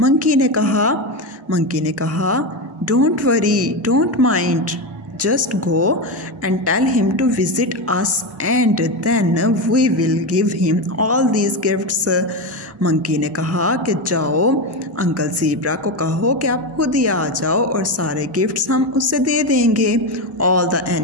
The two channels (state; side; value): normal; both; correlation 0.14